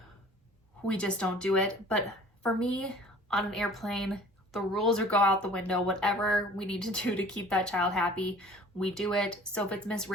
we just don't do it. But for me, on an airplane, the rules are go out the window. Whatever we need to do to keep that child happy, we do it. So if it's Miss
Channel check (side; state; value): both; normal; correlation 0.48